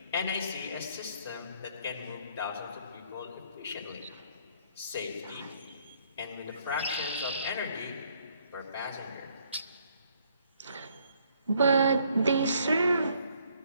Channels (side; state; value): both; inverted; correlation -0.67